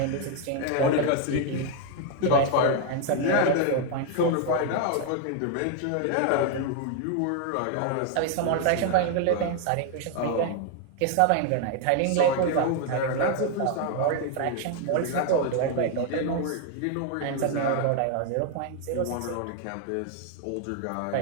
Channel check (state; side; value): different; both; correlation 0.00